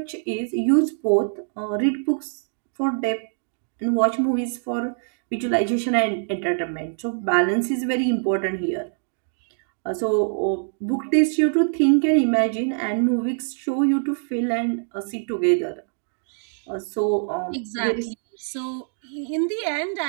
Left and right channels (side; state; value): left; silent; digital silence